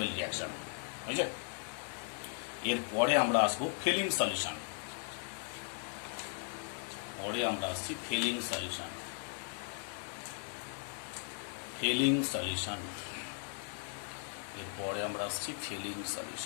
রিয়াকশন, বুঝছে। এরপরে আমরা আসবো ফিলিং সলিউশন, পরে আমরা আসছি ফিলিং সলিউশন। এরপরে আমরা আসছি feeling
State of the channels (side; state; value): right; silent; 53 dB below the other